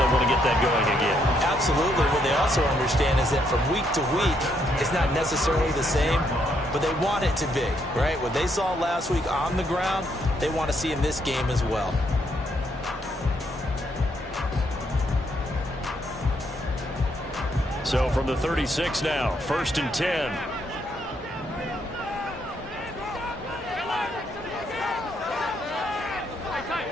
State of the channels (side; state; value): both; normal; correlation 0.74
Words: want to get that going again. Absolutely. What they also understand is that from week to week, it's not necessarily the same, but they want it to be, right? What they saw last week on the ground, they want to see in this game as well. So from the 36 now, 1st and 10.